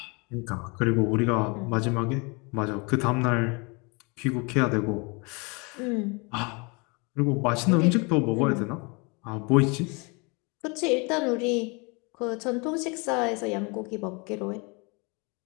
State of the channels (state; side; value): quieter; right; 30.1 dB